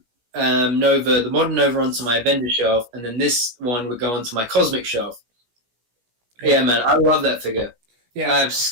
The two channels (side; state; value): left; late; 17 ms